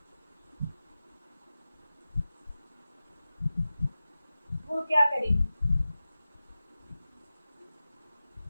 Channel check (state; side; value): inverted; both; correlation -0.95